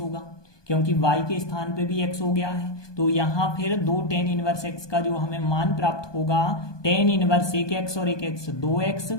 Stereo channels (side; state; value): right; late; 1.2 ms